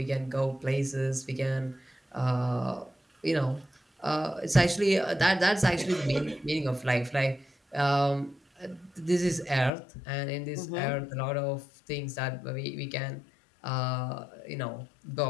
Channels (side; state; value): right; drops out; at 9.7 s